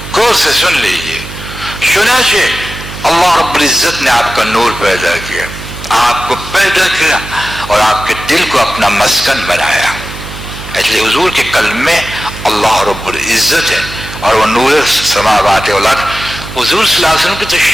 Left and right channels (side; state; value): right; noise; hum, 12 dB below the sound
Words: غور سے سن لیجیے. چنانچہ اللہ رب العزت نے آپ کا نور پیدا کیا، آپ کو پیدا کیا اور آپ کے دل کو اپنا مسکن بنایا. اس لیے حضور کے قلب میں اللہ رب العزت ہے، اور وہ نور سماوات والارض. حضور صلی اللہ علیہ وسلم کی تو